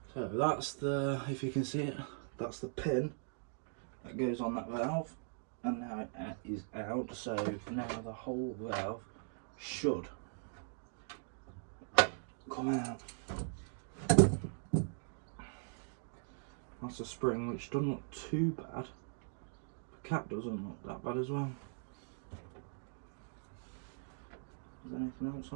So that's the, if you can see it, that's the pin that goes on that valve, and now it is out, so now the whole valve should come out. That's a spring which doesn't look too bad. The cap doesn't look that bad as well. Is there anything else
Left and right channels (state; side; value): silent; left; digital silence